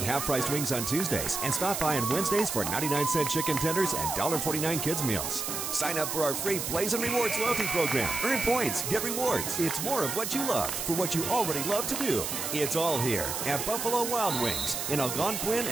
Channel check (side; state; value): right; noise; hiss, 3 dB below the sound